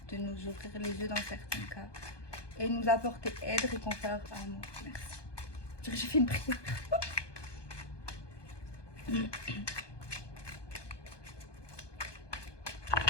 de nous ouvrir les yeux dans certains cas et nous apporter aide, réconfort, amour. Merci. J'ai fait une prière.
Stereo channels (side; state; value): right; late; 1.2 ms